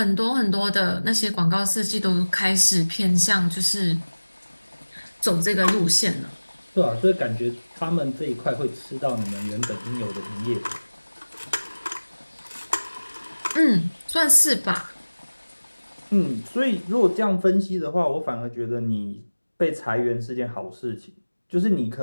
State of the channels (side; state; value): both; inverted; correlation -1.00